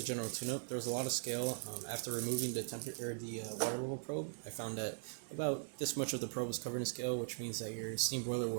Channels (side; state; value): left; silent; digital silence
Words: general tune-up. There was a lot of scale. After removing the water level probe, I found that about this much of the probe was covered in scale, which means that your steam boiler